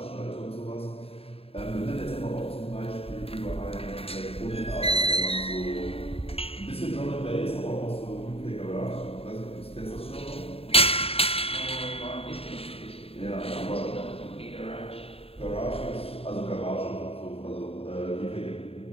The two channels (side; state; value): right; late; 0.28 ms